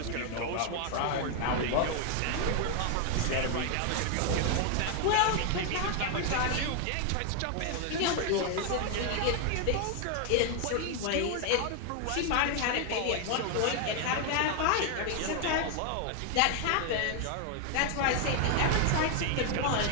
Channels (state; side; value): different; both; correlation 0.00